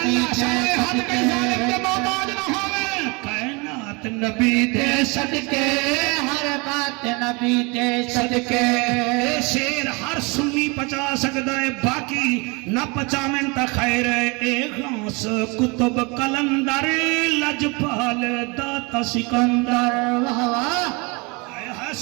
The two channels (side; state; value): left; quieter; 28.6 dB